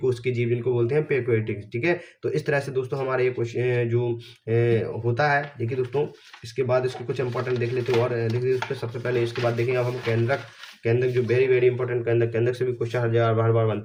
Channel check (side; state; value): both; identical; correlation 1.00